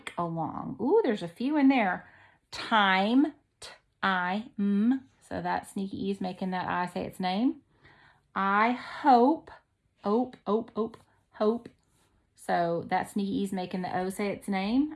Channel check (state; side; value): identical; both; correlation 1.00